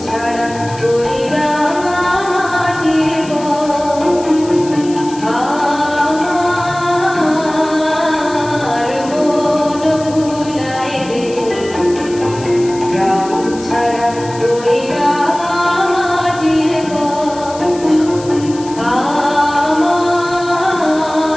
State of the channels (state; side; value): noise; left; hiss, 17 dB below the sound